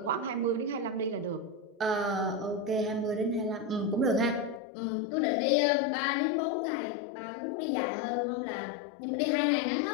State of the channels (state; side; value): drops out; right; at 4.6 s